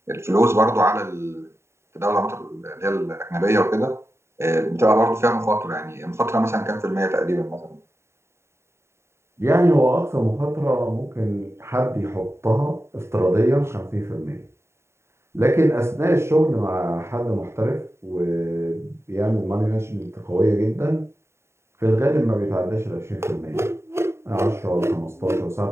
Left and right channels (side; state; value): left; late; 0.13 ms